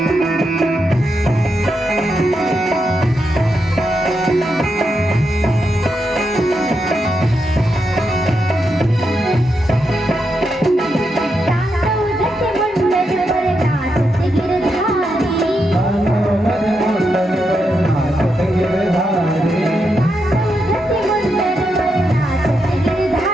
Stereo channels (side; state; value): both; normal; correlation 0.84